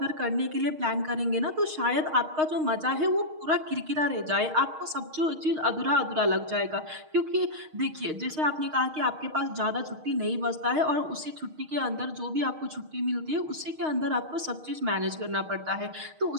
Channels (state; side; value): late; left; 6.5 ms